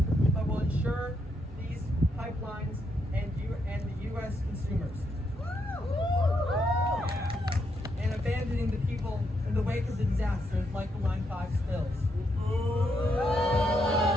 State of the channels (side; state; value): both; normal; correlation 0.79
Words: but will insure these pipelines and the U.S. consumers. And abandoning the people in the wake of the disasters like the Line 5 spills.